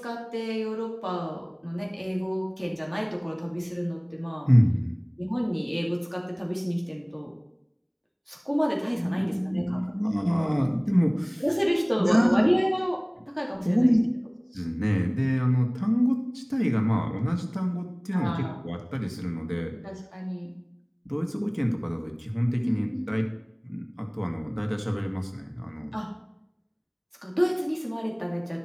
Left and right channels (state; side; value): identical; both; correlation 1.00